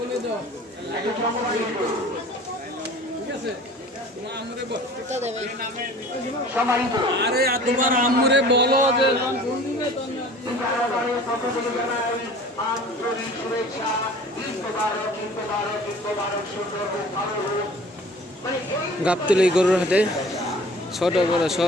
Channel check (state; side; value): normal; both; correlation 0.46